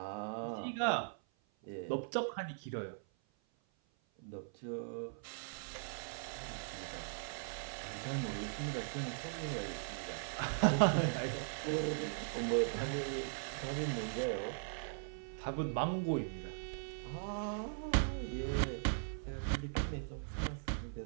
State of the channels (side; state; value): left; silent; 51 dB below the other